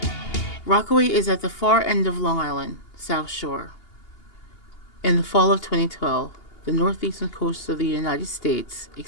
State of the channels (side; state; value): right; late; 2.8 ms